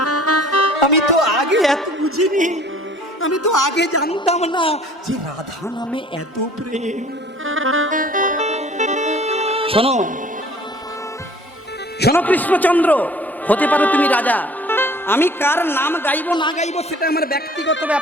আমি তো আগে এত বুঝিনি আমি তো আগে জানতাম না যে রাধা নামে এত প্রেম শোনো শোনো কৃষ্ণচন্দ্র হতে পারো তুমি রাজা আমি কার নাম গাইবো না গাইবো সেটা আমার ব্যক্তিগত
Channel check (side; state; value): both; normal; correlation 0.51